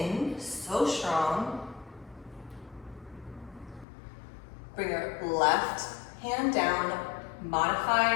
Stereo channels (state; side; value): drops out; right; at 3.9 s